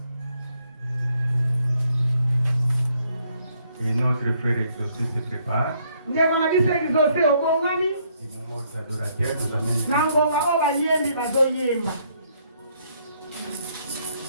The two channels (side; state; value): both; inverted; correlation -0.69